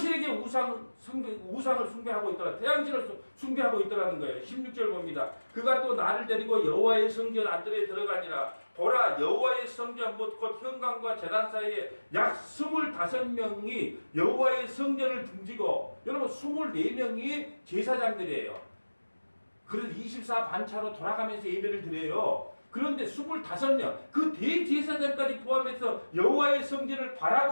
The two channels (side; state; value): both; inverted; correlation -1.00